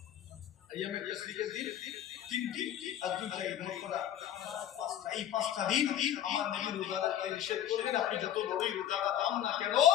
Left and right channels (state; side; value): quieter; right; 11.0 dB